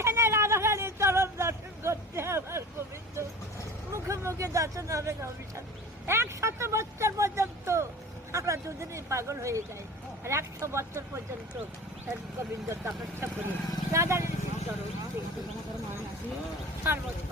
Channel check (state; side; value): normal; both; correlation 0.38